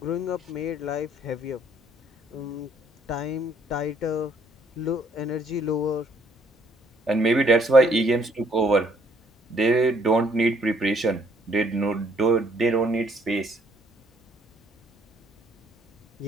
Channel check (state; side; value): normal; both; correlation 0.65